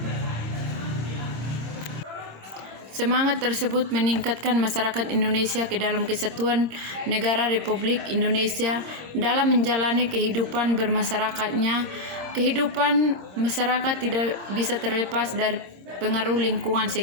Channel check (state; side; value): late; left; 25 ms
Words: Semangat tersebut meningkatkan masyarakat Indonesia ke dalam kesatuan negara Republik Indonesia dalam menjalani kehidupan bermasyarakatnya. Kehidupan masyarakat tidak bisa terlepas dari pengaruh lingkungan